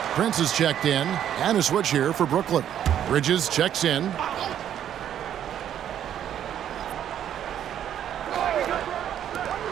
Prince is checked in, and a switch here for Brooklyn. Bridges checks in.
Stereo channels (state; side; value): quieter; left; 10.2 dB